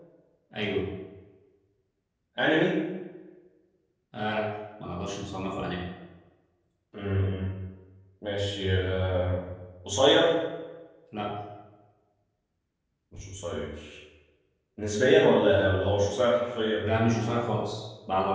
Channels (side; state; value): both; identical; correlation 1.00